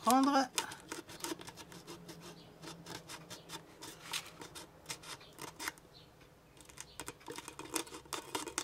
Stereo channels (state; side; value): identical; both; correlation 1.00